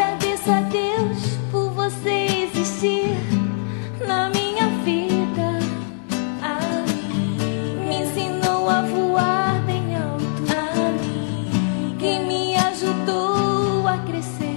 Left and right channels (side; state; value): right; silent; 64 dB below the other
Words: a Deus por você existir na minha vida. Amiga, me ensinou a voar bem alto. Amiga, que me ajudou a